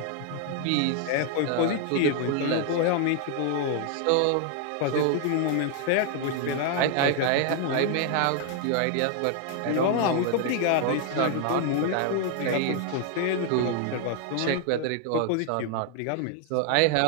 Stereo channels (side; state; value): both; different; correlation 0.00